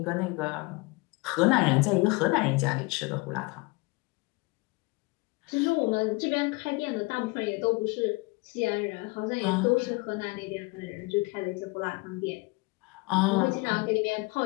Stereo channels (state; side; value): quieter; right; 26.0 dB